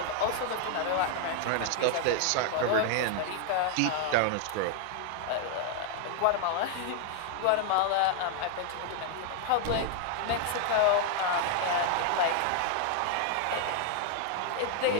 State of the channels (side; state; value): both; different; correlation 0.00